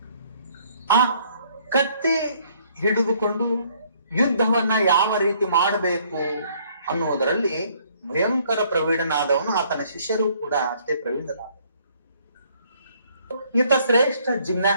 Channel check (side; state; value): both; inverted; correlation -0.63